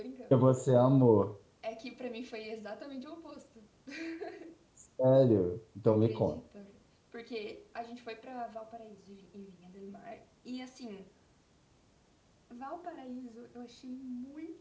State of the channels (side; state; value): both; identical; correlation 1.00